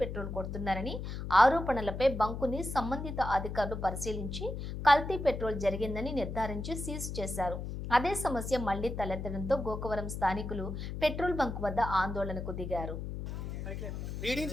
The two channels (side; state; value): left; noise; hum, 6 dB below the sound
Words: పెట్రోల్ కొడుతున్నారని ఆరోపణలపై బంకుని సంబంధిత అధికారులు పరిశీలించి కల్తీ పెట్రోల్ జరిగిందని నిర్ధారించి సీజ్ చేశారు. అదే సమస్య మళ్లీ తలెత్తడంతో గోకవరం స్థానికులు పెట్రోల్ బంక్ వద్ద ఆందోళనకు దిగారు. రీడింగ్